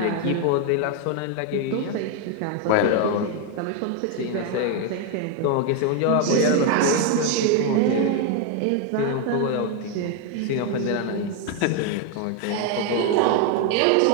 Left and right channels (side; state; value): both; different; correlation 0.01